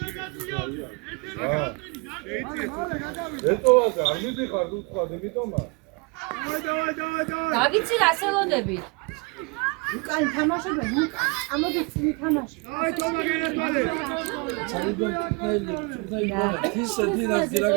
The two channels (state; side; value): quieter; left; 30.0 dB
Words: გავიცი რა სელოდები. უკან თამაშობენ უკან ამოდის თამაში აი თომა გენერვალე!